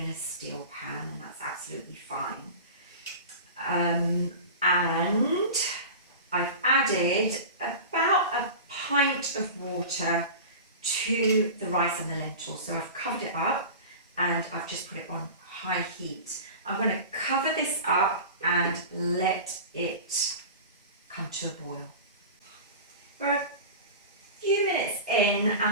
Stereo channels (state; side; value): inverted; both; correlation -0.33